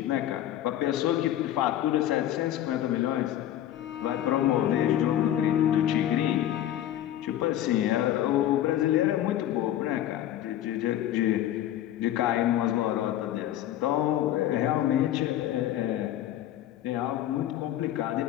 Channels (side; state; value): right; quieter; 12.3 dB